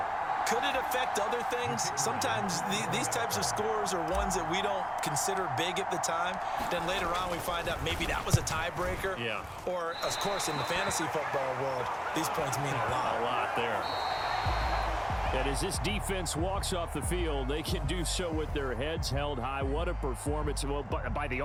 Could it affect other things? Sometimes these types of scores are ones that we don't consider big at the time. Then later on we find out maybe that was a tiebreaker. Yeah. Or, of course, in the fantasy football world, these points mean a lot. A lot there. And as this defense walks off the field, they can do so with their heads held high. What a performance. Well, by the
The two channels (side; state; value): both; identical; correlation 1.00